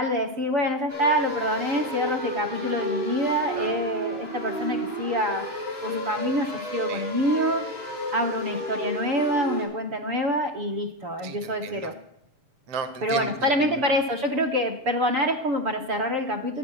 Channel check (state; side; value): late; left; 7.0 ms